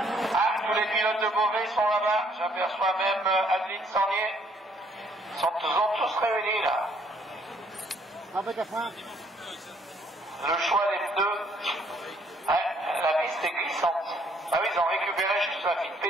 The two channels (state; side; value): normal; both; correlation 0.65